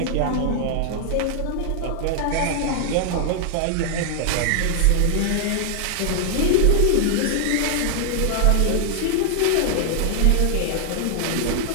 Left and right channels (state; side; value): different; both; correlation 0.00